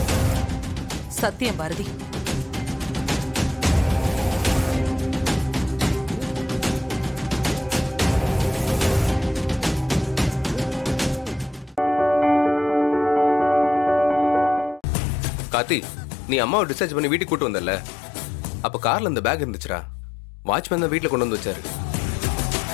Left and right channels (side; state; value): right; drops out; at 14.8 s